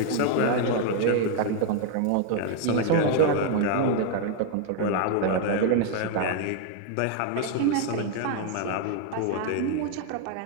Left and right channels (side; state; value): both; different; correlation 0.00